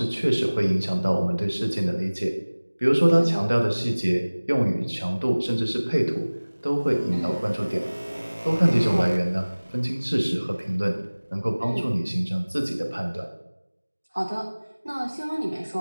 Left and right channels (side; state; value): both; inverted; correlation -1.00